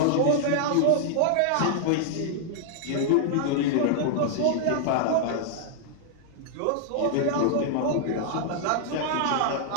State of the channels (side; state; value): both; different; correlation -0.01